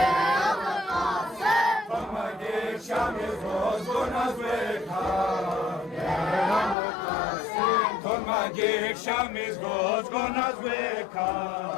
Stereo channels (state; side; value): drops out; right; at 6.8 s